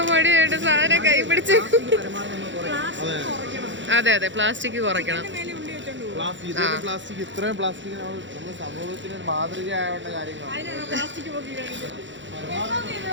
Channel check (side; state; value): left; late; 0.54 ms